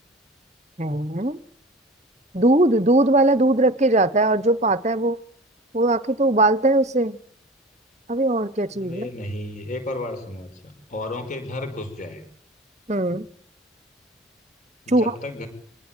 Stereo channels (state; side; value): normal; both; correlation 0.38